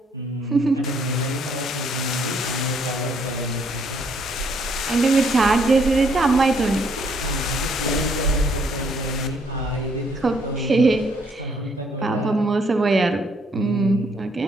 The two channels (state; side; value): normal; both; correlation 0.68